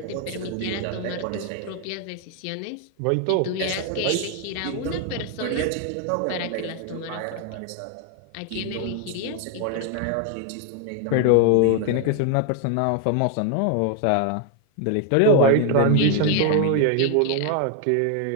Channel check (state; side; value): different; both; correlation 0.00